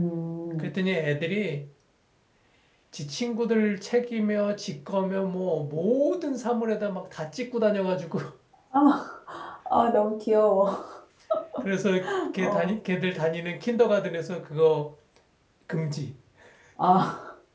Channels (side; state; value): both; identical; correlation 1.00